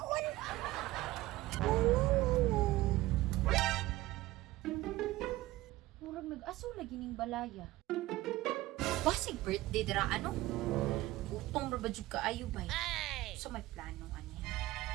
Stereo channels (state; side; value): quieter; left; 17.5 dB